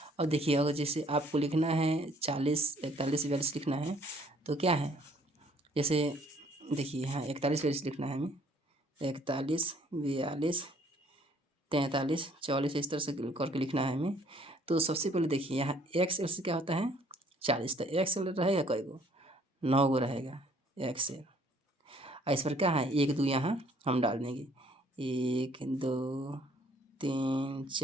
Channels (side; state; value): both; normal; correlation 0.61